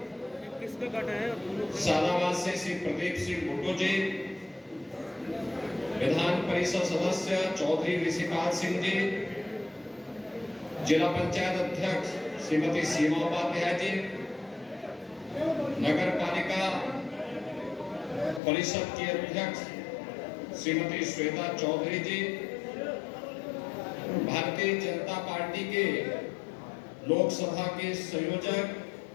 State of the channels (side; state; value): right; drops out; at 18.4 s